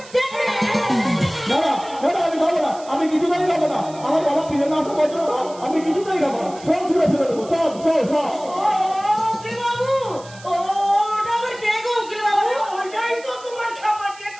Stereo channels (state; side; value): noise; right; hiss, 20 dB below the sound